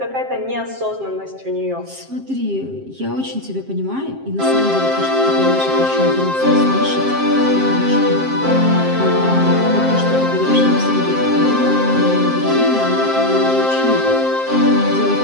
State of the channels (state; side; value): late; left; 7.5 ms